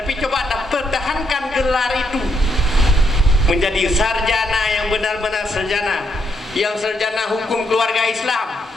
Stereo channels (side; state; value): both; normal; correlation 0.76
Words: coba Anda pertahankan gelar itu menjadi sarjana yang benar-benar sarjana, yang sarjana hukum keluarga Islam.